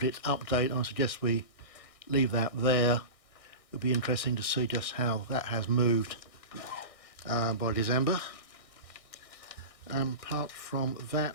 update. I suggest we leave that there. It'll be interesting to see just how that has moved by December. Apart from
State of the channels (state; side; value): late; right; 1.6 ms